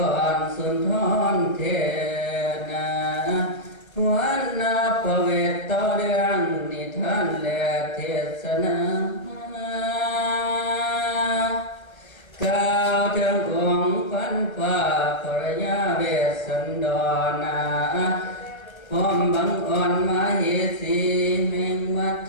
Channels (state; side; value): late; right; 1.3 ms